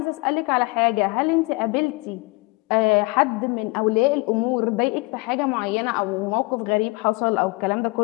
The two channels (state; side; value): quieter; right; 25.7 dB